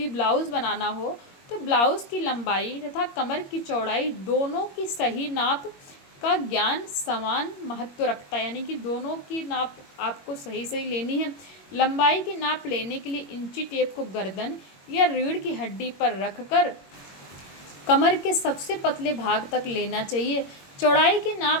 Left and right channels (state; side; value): late; right; 21 ms